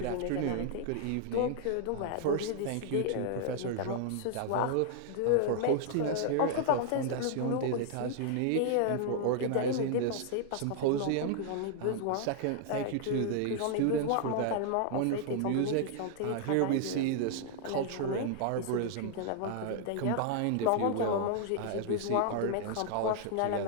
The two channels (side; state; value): both; different; correlation 0.00